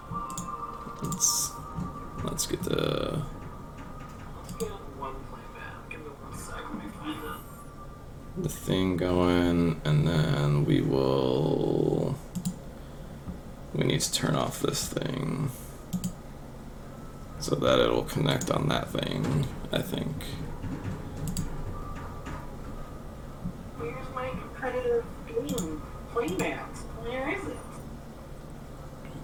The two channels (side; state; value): both; identical; correlation 1.00